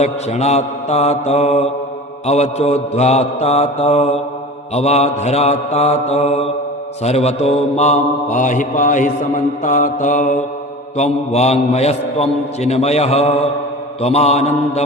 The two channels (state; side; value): normal; both; correlation 0.36